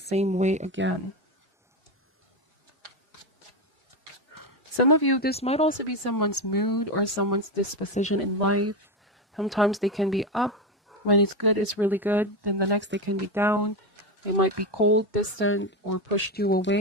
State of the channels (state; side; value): normal; both; correlation 0.13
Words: way again. Some of you, this might also be someone's mood or someone's disposition in life. Sometimes they can be up. When it's good, it's really good. Then the next they can be down. They might be cold, distant, or pushed you